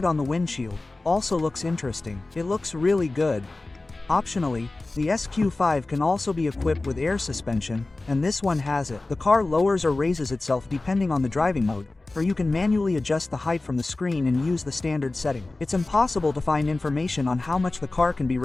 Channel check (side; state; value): right; quieter; 3.1 dB